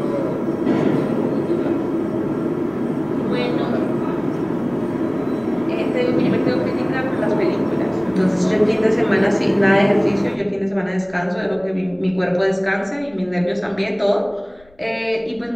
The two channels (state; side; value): noise; left; rumble, 29 dB below the sound